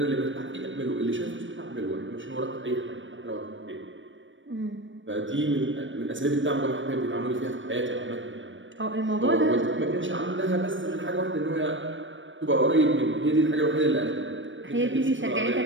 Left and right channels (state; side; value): late; left; 0.56 ms